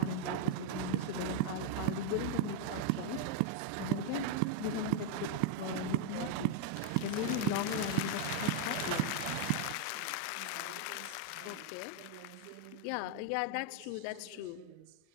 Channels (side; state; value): both; different; correlation 0.00